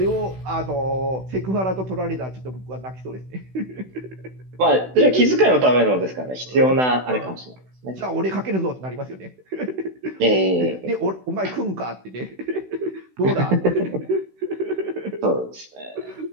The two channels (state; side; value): late; left; 16 ms